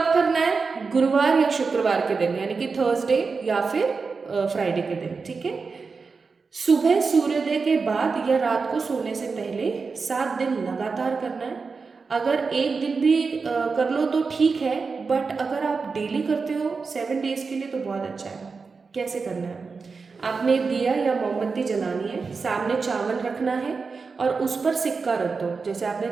करना है? गुरुवार या शुक्रवार के दिन, यानी कि थर्सडे या फिर फ्राइडे के दिन, ठीक है। सुबह सूर्योदय के बाद या रात को सोने से पहले 7 दिन लगातार करना है। अगर एक दिन भी कर लो तो ठीक है, बट अगर आप डेली करते हो 7 डेज के लिए तो बहुत अच्छा है। कैसे करना है? आपने दिया या मोमबत्ती जलानी है, सामने चावल रखना है और उस पर सिक्का रख दो। जैसे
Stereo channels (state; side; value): quieter; left; 4.7 dB